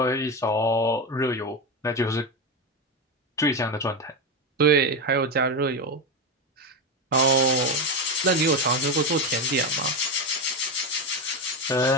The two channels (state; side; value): normal; both; correlation 0.14